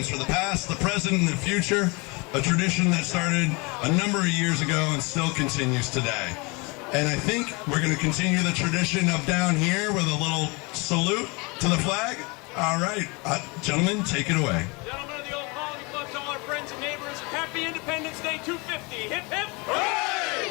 for the past, the present, and the future, a tradition that started a number of years ago and still continues today. And I think we're going to continue the tradition of down here with a little salute to the flag. All right, gentlemen, take it away. Gentlemen of the Old Colony Club, to all our friends and neighbors, Happy Independence Day 250. Hip, hip, hooray!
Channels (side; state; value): right; quieter; 28.1 dB